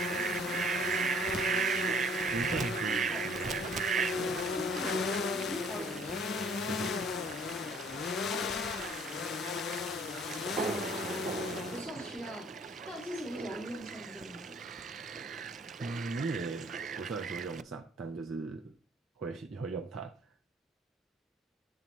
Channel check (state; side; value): normal; both; correlation 0.56